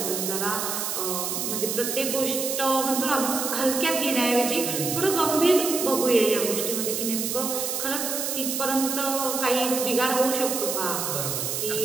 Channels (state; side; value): noise; right; hiss, 2 dB below the sound